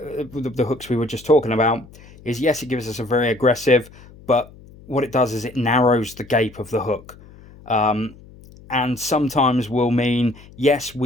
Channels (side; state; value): left; noise; hum, 22 dB below the sound